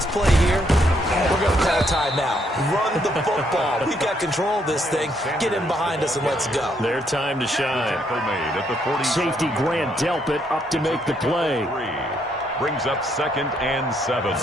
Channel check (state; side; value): normal; both; correlation 0.73